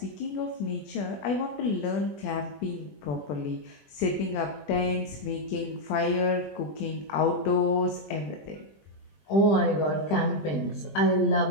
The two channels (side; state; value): right; late; 20 ms